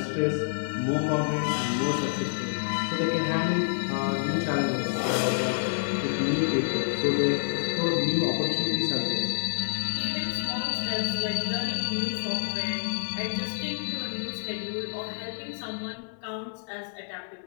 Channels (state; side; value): silent; right; 58 dB below the other